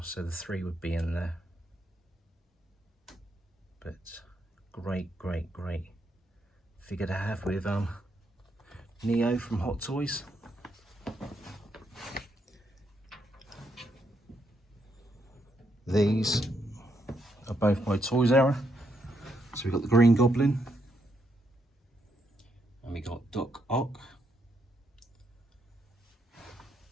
so the 3 would be in there. But great figure to have with Neo from Hot Toys. These are both by Toys Era. So we've got the Green Goblin, and we got Doc Ock.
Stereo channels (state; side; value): normal; both; correlation 0.78